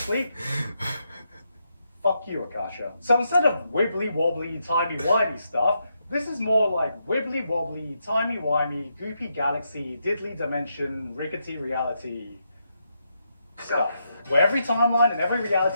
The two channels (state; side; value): inverted; both; correlation -0.82